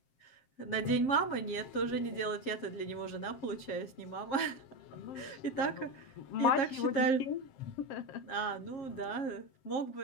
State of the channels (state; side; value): late; right; 7.5 ms